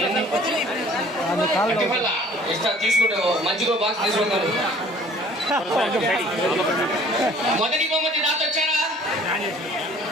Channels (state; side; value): normal; both; correlation 0.52